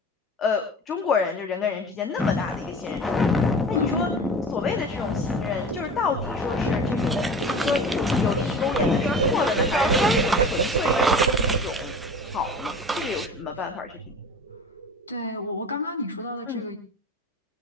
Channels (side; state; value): both; normal; correlation 0.37